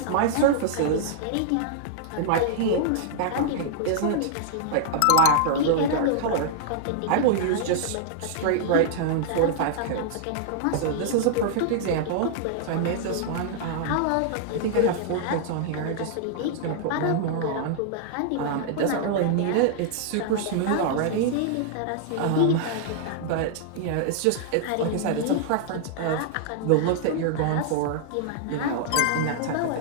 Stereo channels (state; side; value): different; both; correlation -0.01